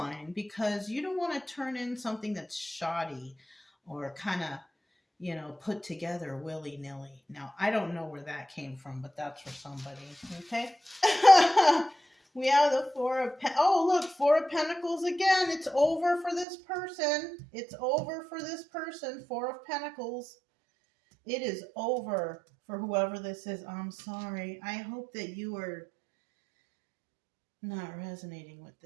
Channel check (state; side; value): drops out; left; at 16.4 s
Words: because you don't want to turn in something that's shoddy or kind of, you know, put together willy-nilly. Now, I don't know where that came from, but that's for somebody, okay? We have the oh, look, Four of Pentacles again. It's over for this person. It's over for this person. Four of Pentacles. It is over for whoever this is. I'm sorry. I hope that you are not resonating with